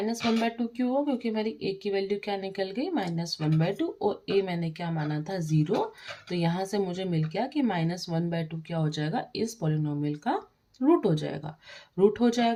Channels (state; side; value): identical; both; correlation 1.00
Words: क्यों हो, क्योंकि मेरी a की वैल्यू क्या निकल गई -1/2 और a मैंने क्या माना था 0। तो यहाँ से मुझे मिल गया कि -1/2 क्या हो जाएगा, इस पॉलिनोमियल का रूट हो जाएगा। रूट हो